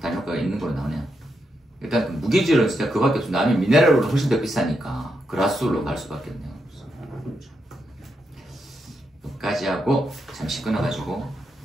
단일 효과가 있는 걸로 나오네요. 일단 그 무기질은 진짜 그밖에 없어. 남이 미네랄로 훨씬 더 비싸니까 그라스울로 갈 수밖에 없네요. 여기까지 하고 잠시 끊어가지고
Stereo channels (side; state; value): both; normal; correlation 0.83